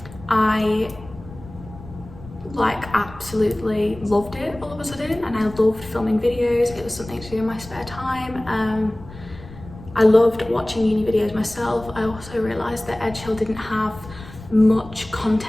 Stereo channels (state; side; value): noise; left; rumble, 17 dB below the sound